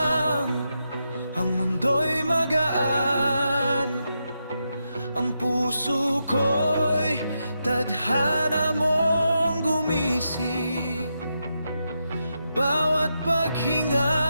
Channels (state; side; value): inverted; both; correlation -0.85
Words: ang mundo'y magaan. Ang puso ko'y tadhana mong gumising. Bawat paghinga,